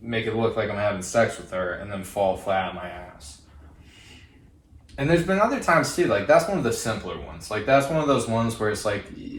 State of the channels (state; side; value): identical; both; correlation 1.00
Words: make it look like I'm having sex with her, and then fall flat on my ass. And there's been other times too, like that's one of the simpler ones. Like that's one of those ones where it's like